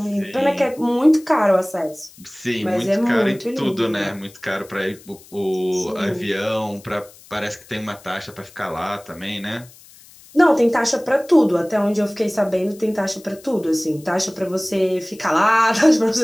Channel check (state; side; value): noise; left; hiss, 23 dB below the sound